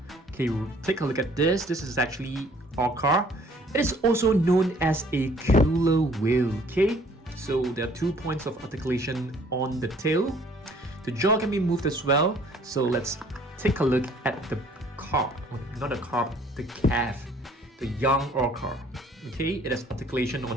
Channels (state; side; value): normal; both; correlation 0.58